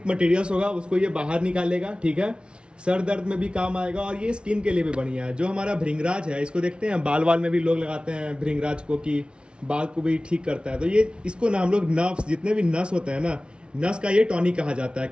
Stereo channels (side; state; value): left; late; 0.057 ms